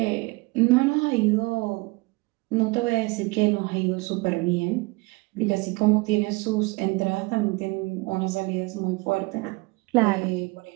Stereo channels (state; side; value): quieter; left; 25.1 dB